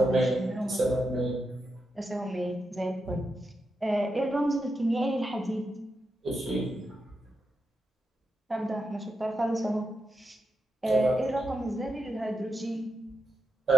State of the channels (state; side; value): normal; both; correlation 0.86